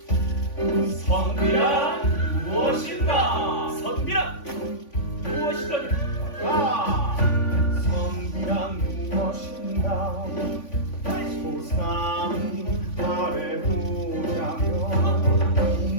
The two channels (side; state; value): right; late; 3.5 ms